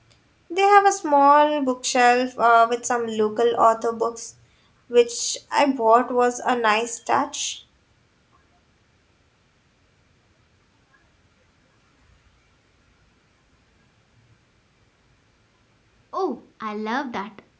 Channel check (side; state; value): both; identical; correlation 1.00